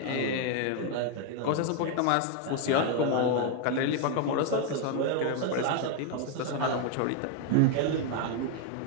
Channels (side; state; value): both; different; correlation 0.01